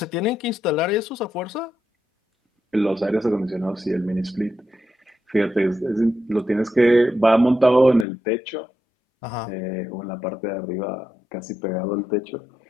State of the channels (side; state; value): right; drops out; at 8.1 s